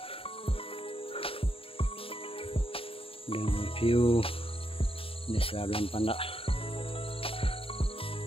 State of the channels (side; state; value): right; late; 0.27 ms